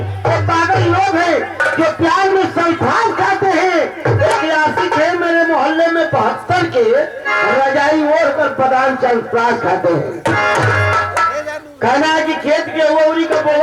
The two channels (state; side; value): identical; both; correlation 1.00